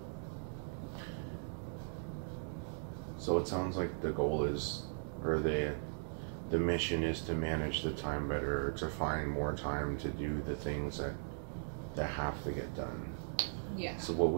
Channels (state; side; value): silent; left; digital silence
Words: it sounds like the goal is, or the mission is to manage the time better, or to find more time to do the things that have to get done. Yeah. So what